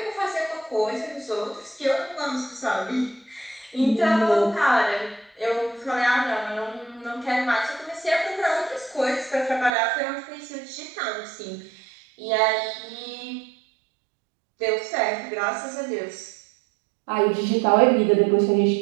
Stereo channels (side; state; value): left; drops out; at 9.7 s